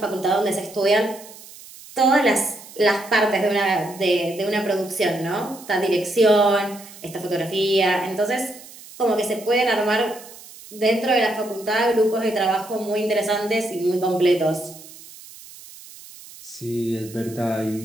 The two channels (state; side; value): noise; right; hiss, 18 dB below the sound